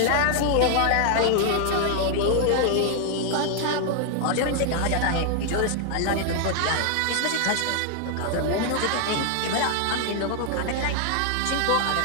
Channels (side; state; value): both; different; correlation 0.00